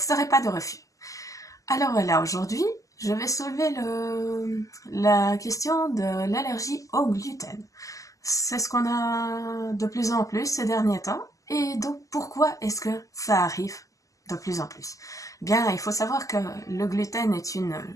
de refus. Alors voilà, aujourd'hui, je vais soulever la question de l'allergie au gluten. C'est ce qu'on a de plus en plus ces derniers temps. Et donc, pourquoi est-ce que ça arrive de plus en plus? Bien, il faut savoir que le gluten est une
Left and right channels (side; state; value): right; late; 0.16 ms